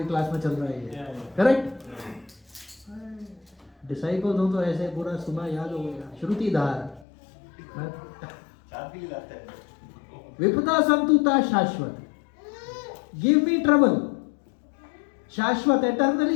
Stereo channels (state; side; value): drops out; right; at 7.1 s